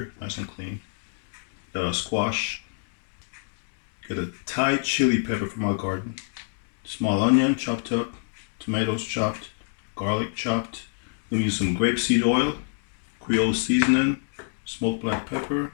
nice and clean. Got a squash. Got a Thai chili pepper from our garden. Small onion chopped up, tomatoes chopped, garlic chopped. We're using some grapeseed oil, Creole seasoning, smoked black pepper,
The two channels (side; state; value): right; silent; digital silence